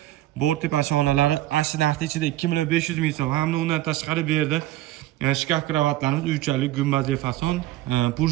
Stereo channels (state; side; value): quieter; left; 15.2 dB